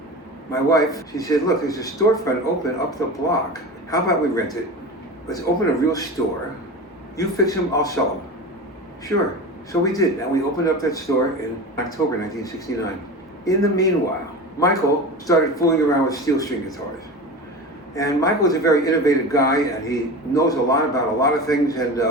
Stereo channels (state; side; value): normal; both; correlation 0.30